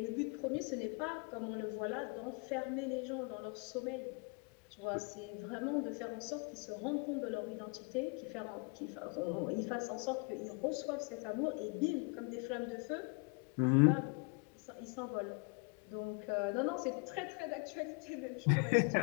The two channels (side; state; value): right; quieter; 32.5 dB